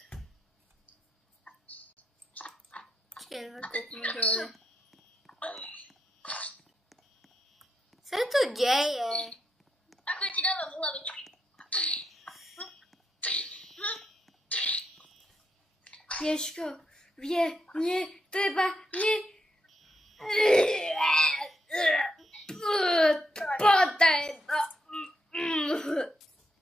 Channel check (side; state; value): both; normal; correlation 0.82